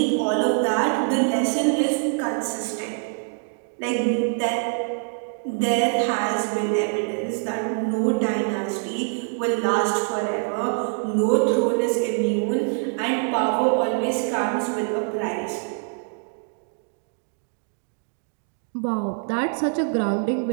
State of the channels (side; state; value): left; silent; 55 dB below the other